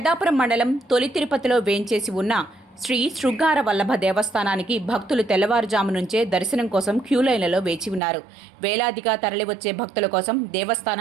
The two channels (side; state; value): left; drops out; at 8.0 s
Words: మండలం తొలి తిరుపతిలో వేంచేసి ఉన్న శ్రీ శృంగార వల్లభ దేవస్థానానికి భక్తులు తెల్లవారుజాము నుంచే దర్శనం కోసం క్యూలైన్లలో వేచి ఉన్నారు. వేలాదిగా తరలివచ్చే భక్తుల కోసం